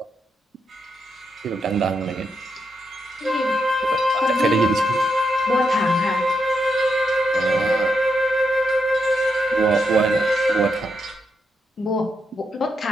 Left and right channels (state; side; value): normal; both; correlation 0.82